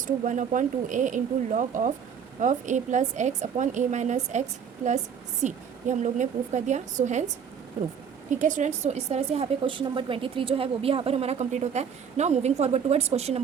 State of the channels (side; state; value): left; quieter; 7.4 dB